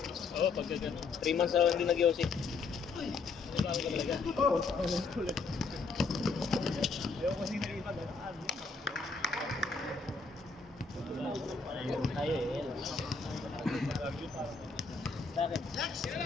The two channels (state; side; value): quieter; right; 4.5 dB